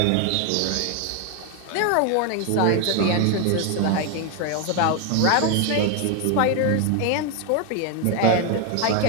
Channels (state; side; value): different; both; correlation 0.01